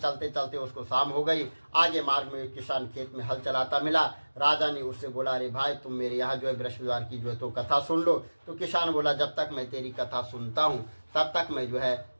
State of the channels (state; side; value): inverted; both; correlation -1.00